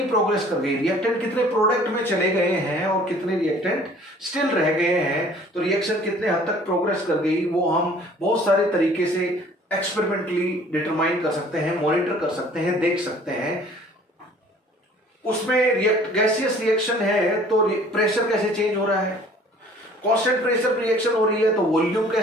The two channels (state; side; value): normal; both; correlation 0.53